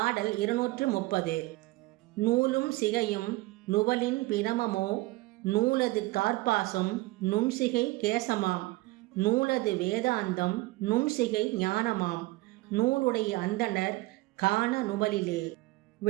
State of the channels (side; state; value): left; quieter; 20.7 dB